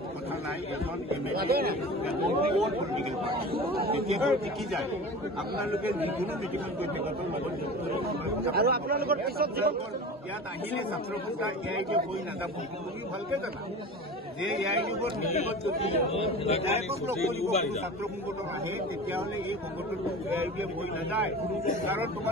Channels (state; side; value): normal; both; correlation 0.34